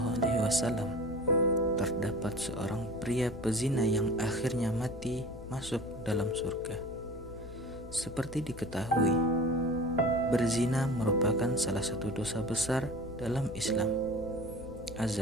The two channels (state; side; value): noise; left; hum, 14 dB below the sound